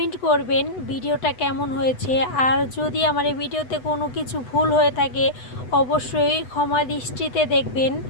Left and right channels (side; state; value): right; late; 8.0 ms